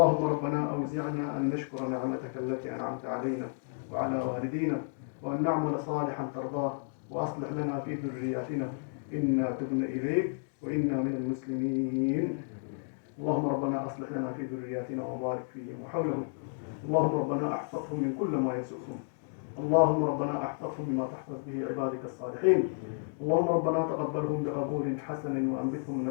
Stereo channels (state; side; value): silent; right; 57 dB below the other